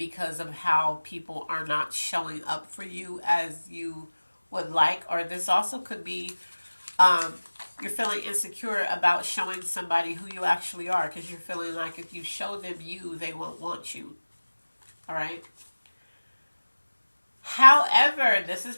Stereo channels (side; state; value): both; inverted; correlation -1.00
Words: of how people are not showing up for you as you would like, or this also could be um, you're feeling insecure about showing somebody who you actually are, because you're feeling like if you show them you, they won't want you. All right. However, this is